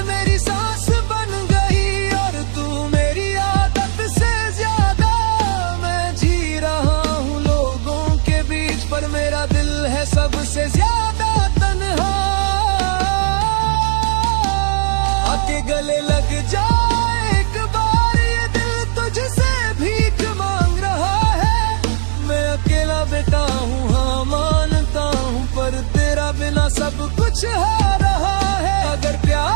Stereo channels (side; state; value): left; silent; 68 dB below the other